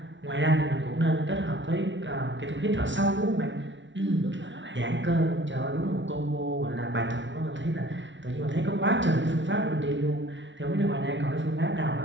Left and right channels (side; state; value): left; late; 0.55 ms